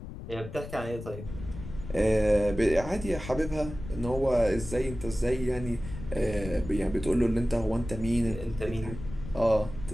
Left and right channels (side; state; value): left; noise; rumble, 11 dB below the sound